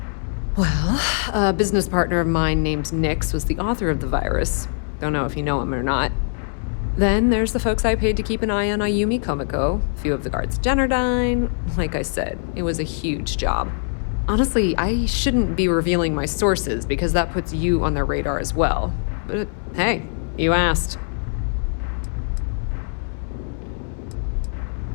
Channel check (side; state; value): right; silent; 64 dB below the other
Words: Well, a business partner of mine named Nix was the author of the virus. Don't know if you know him or not. Then there's the folks I paid to keep an eye on Ayumi Komiko, a few of the guards at Generdyne. Like I said, it was a huge job. Honestly, I shouldn't be revealing my sources because that puts you on their radar as well. But hey, you asked.